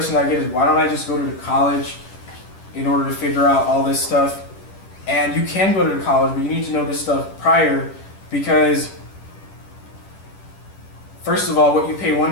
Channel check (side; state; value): right; late; 10 ms